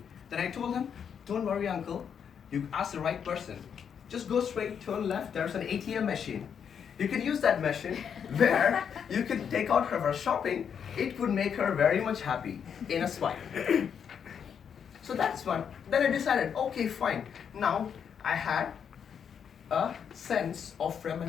Then I told him, don't worry uncle, you asked the right person. Just go straight, turn left, there's an ATM machine. You can use that machine where you can take out her shopping. It would make her very much happy in a swipe. So that's one. Then I decided, okay, fine. Now I had a sense of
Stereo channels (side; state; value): right; quieter; 7.6 dB